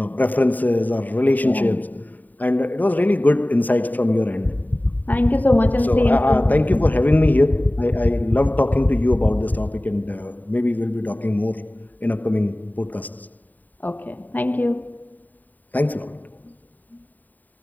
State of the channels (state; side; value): late; right; 0.085 ms